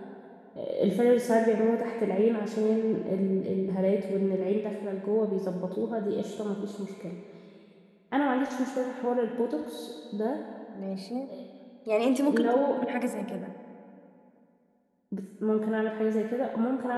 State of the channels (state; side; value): identical; both; correlation 1.00